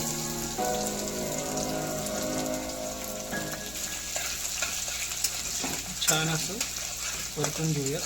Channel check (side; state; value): left; noise; hum, 13 dB below the sound